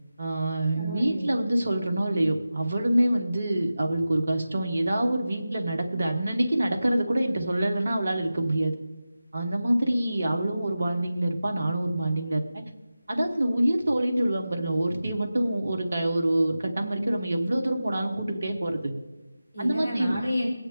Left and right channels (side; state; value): both; inverted; correlation -0.94